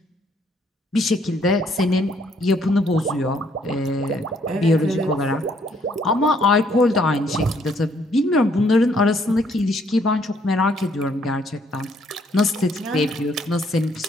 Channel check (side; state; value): both; normal; correlation 0.67